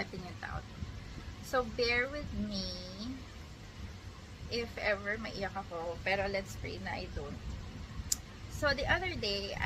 it out. So bear with me if ever maiyak ako. Pero let's pray na I don't. So the other day,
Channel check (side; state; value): both; identical; correlation 1.00